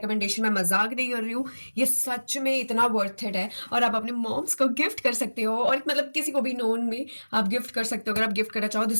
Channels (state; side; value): inverted; both; correlation -1.00